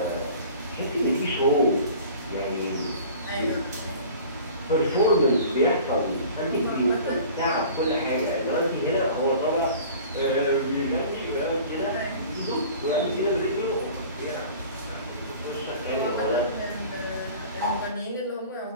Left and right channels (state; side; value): inverted; both; correlation -0.44